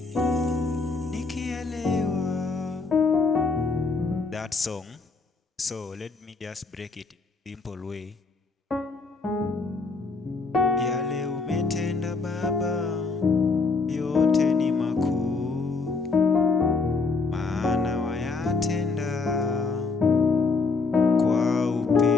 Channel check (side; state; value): right; quieter; 4.2 dB